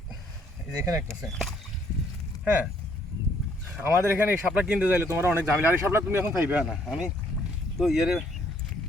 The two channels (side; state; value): both; normal; correlation 0.67